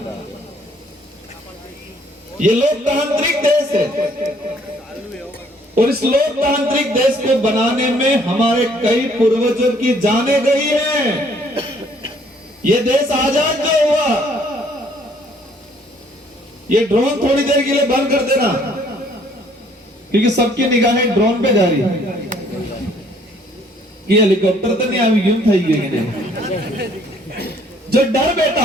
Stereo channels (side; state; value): both; normal; correlation 0.62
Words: ये लोकतांत्रिक देश है, और इस लोकतांत्रिक देश को बनाने में हमारे कई पूर्वजों की जानें गई हैं। ये देश आजाद जो हुआ, ये ड्रोन थोड़ी देर के लिए बंद कर देना, क्योंकि सबकी निगाहें ड्रोन पे जा रही है। कि हेलीकॉप्टर तो नहीं आई क्यों थी गई जो डर बेटा